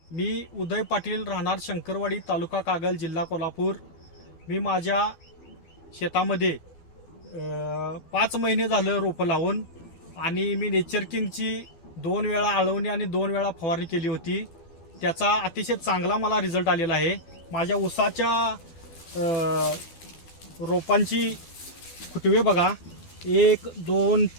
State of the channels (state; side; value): late; right; 12 ms